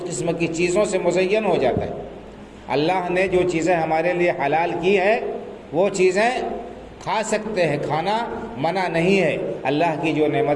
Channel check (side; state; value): both; identical; correlation 1.00